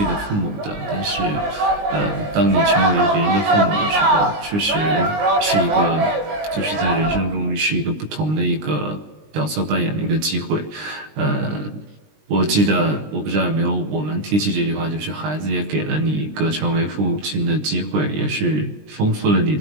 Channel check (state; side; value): late; left; 20 ms